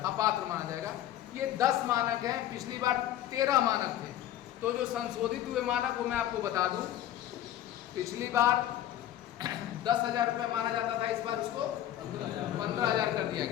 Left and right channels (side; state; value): right; quieter; 12.3 dB